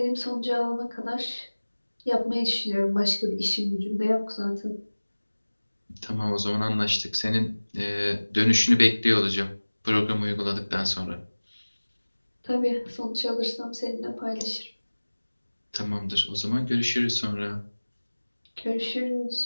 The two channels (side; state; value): both; inverted; correlation -1.00